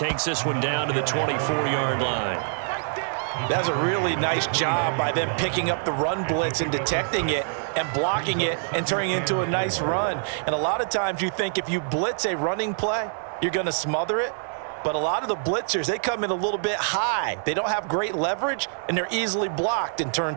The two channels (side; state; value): left; silent; digital silence